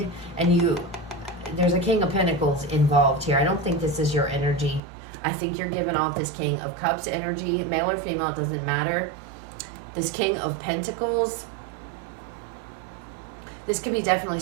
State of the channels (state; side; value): drops out; left; at 4.8 s